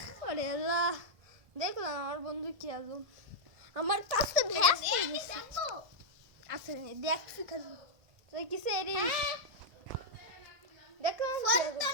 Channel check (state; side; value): late; left; 1.7 ms